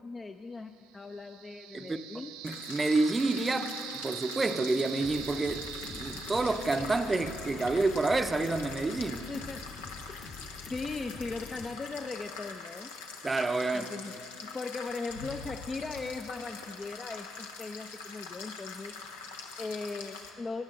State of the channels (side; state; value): both; normal; correlation 0.85